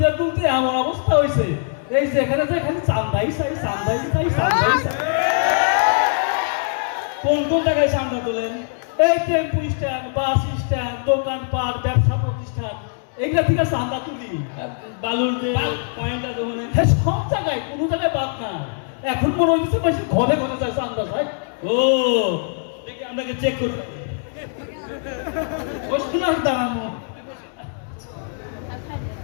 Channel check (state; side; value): silent; right; 64 dB below the other